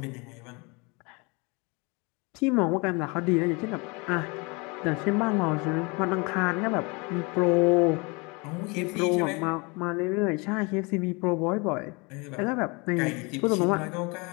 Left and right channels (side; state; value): right; quieter; 28.6 dB